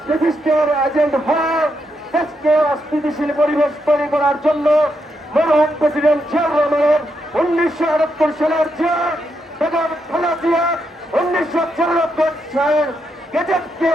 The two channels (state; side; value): normal; both; correlation 0.81